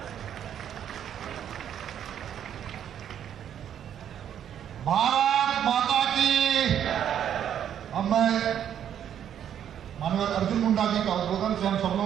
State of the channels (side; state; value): left; quieter; 9.6 dB